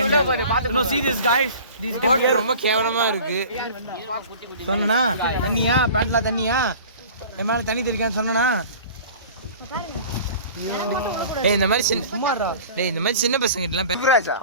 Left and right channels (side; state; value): both; inverted; correlation -0.42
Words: No, see this guys. These boat ரொம்ப கேவலமா இருக்கு. சொன்னனா தண்ணியா பேண்ட்ல தண்ணியா என் மேல தண்ணி தெளிக்கான்னு சொன்னனா. டேய் இந்த மாதிரி சின்ன சும்மாடா. டேய் இந்த மாதிரி சின்ன பசங்க எல்லாம்